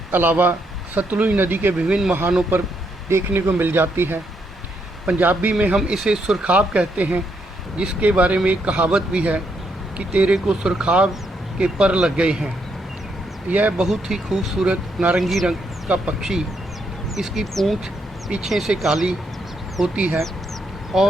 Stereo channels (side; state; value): both; normal; correlation 0.77